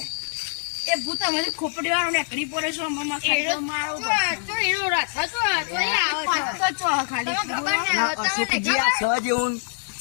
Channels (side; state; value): right; silent; digital silence